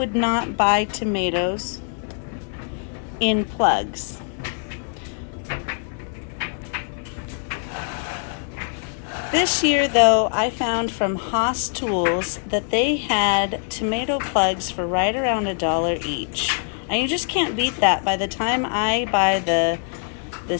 not buy tomatoes in plugs. This year though, I found from Haas Tools that they had tomato plugs for right around $1 each. And you just can't beat that. By the time I buy the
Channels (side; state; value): right; silent; 58 dB below the other